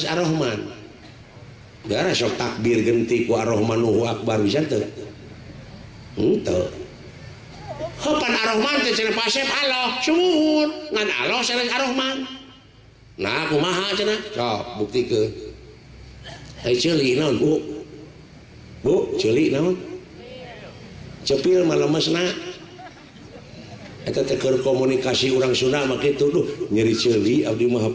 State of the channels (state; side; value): identical; both; correlation 1.00